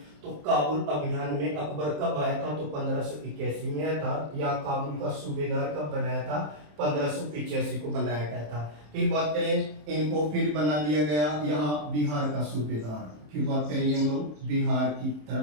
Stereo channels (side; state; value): left; late; 27 ms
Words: तो काबुल अभियान में अकबर कब आया था, तो 1581 में आया था। या काबुल का सूबेदार कब बनाया था, 1585 को बनाया गया था। फिर बात करें इनको फिर बना दिया गया यहाँ बिहार का सूबेदार। फिर बात करें हम लोग बिहार की